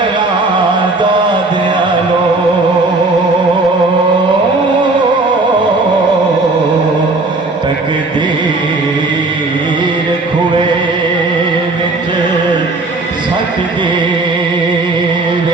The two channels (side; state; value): left; quieter; 3.2 dB